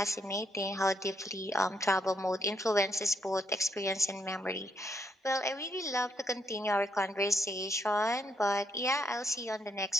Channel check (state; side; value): normal; both; correlation 0.75